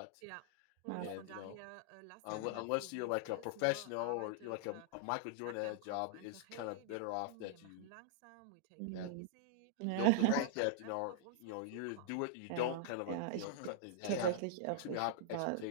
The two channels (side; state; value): both; different; correlation -0.02